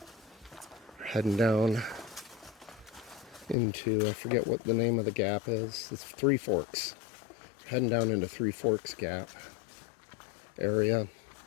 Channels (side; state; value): right; drops out; at 3.6 s